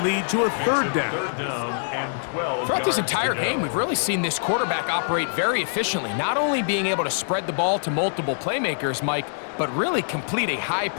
lead to a 3rd down. Throughout this entire game, we've really seen this quarterback operate very efficiently, not only being able to spread the ball to multiple playmakers, Mike, but really complete a high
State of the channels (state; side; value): silent; right; digital silence